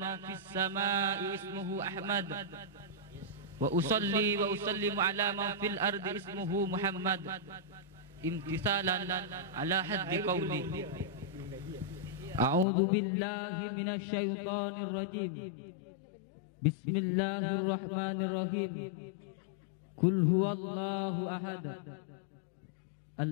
fis samai ismuhu Ahmad, wa usalli wa usallimu ala man fil ardi ismuhu Muhammad, imtisalan ala haddi qawli. A'udzu billahi minasy syaithanir rajim. Bismillahirrahmanirrahim. Qul huwallahu ahad.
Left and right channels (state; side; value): drops out; right; at 12.7 s